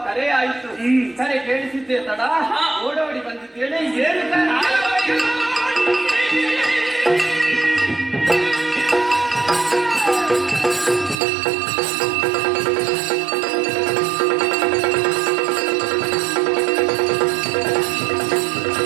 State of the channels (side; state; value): left; drops out; at 11.2 s